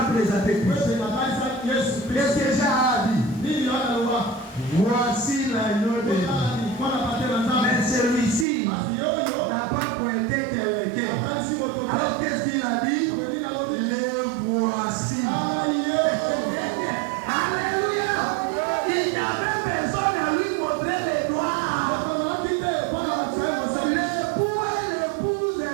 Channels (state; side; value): drops out; left; at 8.5 s